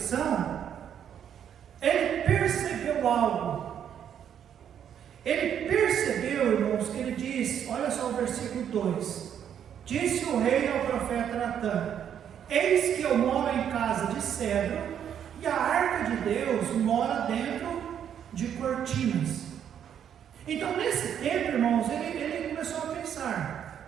ele percebeu algo. Ele percebeu, irmãos, que ele diz, olha só o versículo 2: Disse o rei ao profeta Natã: Eis que eu moro em casa de cedro, e a arca de Deus mora dentro de cortinas. Então, nesse tempo, irmãos, ele começou a pensar:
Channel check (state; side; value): quieter; left; 9.0 dB